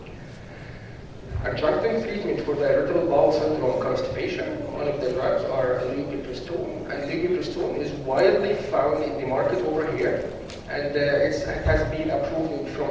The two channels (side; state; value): both; identical; correlation 1.00